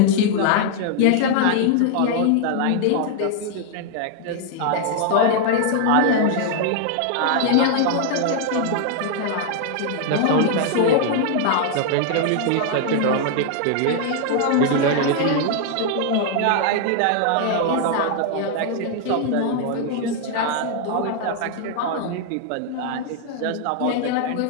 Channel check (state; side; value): different; both; correlation 0.00